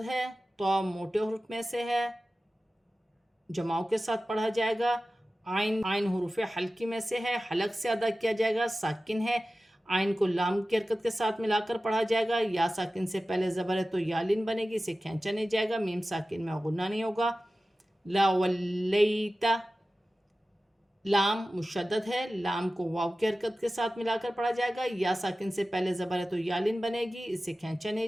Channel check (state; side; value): normal; both; correlation 0.95